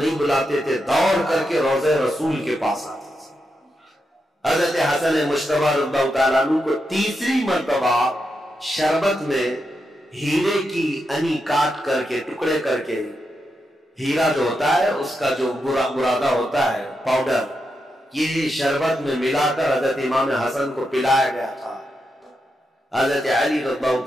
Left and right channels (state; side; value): normal; both; correlation 0.85